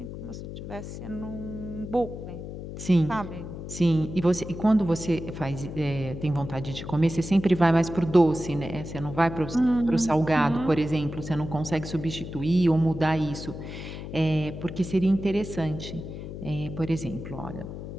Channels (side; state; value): left; noise; hum, 9 dB below the sound